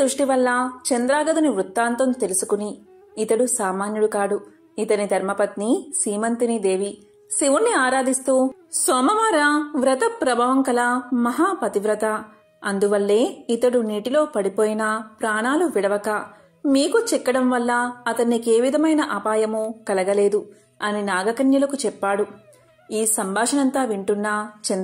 వల్ల చంద్రాగదుని వృత్తాంతం తెలుసుకుని, ఇతడు సామాన్యుడు కాడు, ఇతని ధర్మపత్ని సీమంతిని దేవి శివుణ్ణి ఆరాధిస్తూ సోమవార వ్రత ప్రభావం కల మహాపతివ్రత, అందువల్లే ఇతడు నీటిలో పడిపోయినా ప్రాణాలు విడవక మీకు చిక్కడం వల్ల అతన్నికే విధమైన అపాయము కలగలేదు అని నాగకన్యలకు చెప్పాడు. ఈ సంభాషణంతా వింటున్న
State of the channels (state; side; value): identical; both; correlation 1.00